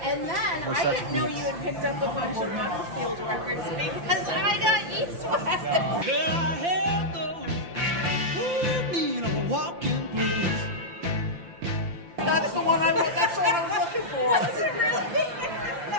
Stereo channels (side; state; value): left; late; 5.8 ms